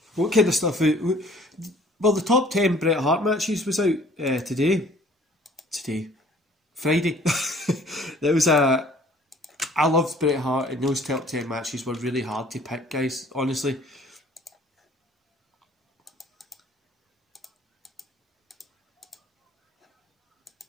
What kind of stuff? Well, the top 10 Bret Hart matches was out today. Friday. There was a. I loved Bret Hart, and those top 10 matches were really hard to pick, guys. Honestly.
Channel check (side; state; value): both; normal; correlation 0.54